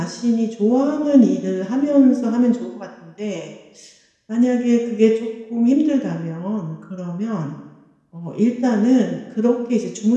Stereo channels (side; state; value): both; identical; correlation 1.00